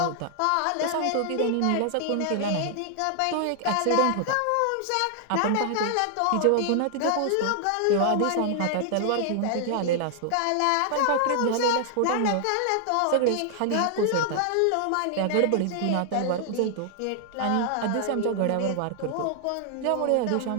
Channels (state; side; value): different; both; correlation 0.00